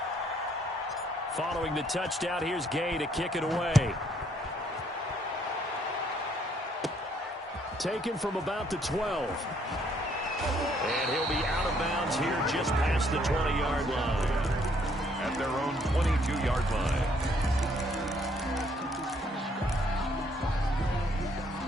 Following the touchdown, here's Gay to kick it away. Taken from about the 12. And he'll be out of bounds here just past the 20-yard line. At their own 22-yard line.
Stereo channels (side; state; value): both; normal; correlation 0.67